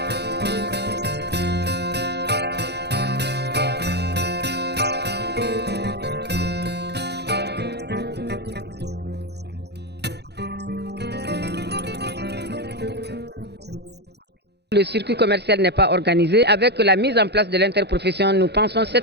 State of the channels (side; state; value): left; late; 0.48 ms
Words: Le circuit commercial n'est pas organisé. Avec la mise en place de l'interprofession, nous pensons